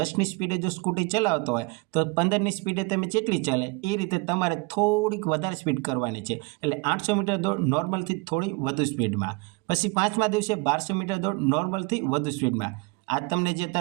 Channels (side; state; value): left; quieter; 27.6 dB